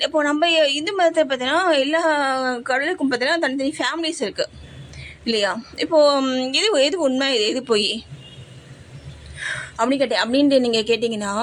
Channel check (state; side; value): identical; both; correlation 1.00